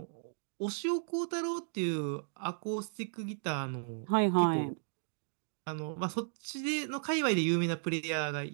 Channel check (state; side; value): silent; left; digital silence